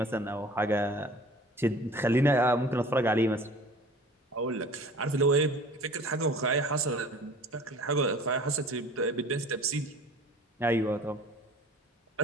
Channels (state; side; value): normal; both; correlation 0.45